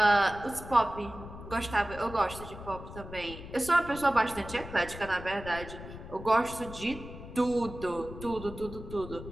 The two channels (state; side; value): noise; left; rumble, 12 dB below the sound